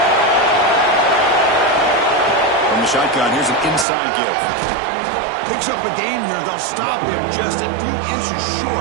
From the shotgun, here's an inside give. Picks up a gain here. They'll stop him just a few inches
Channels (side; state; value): left; drops out; at 3.9 s